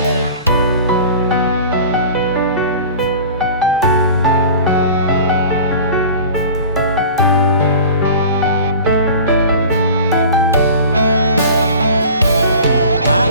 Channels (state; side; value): inverted; both; correlation -0.40